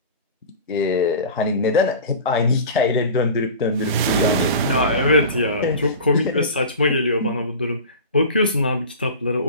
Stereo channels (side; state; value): both; inverted; correlation -0.34